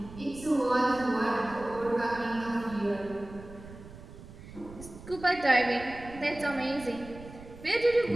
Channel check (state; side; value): noise; right; rumble, 16 dB below the sound